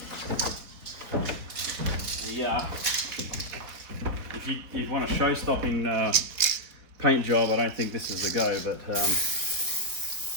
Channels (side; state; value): left; late; 4.1 ms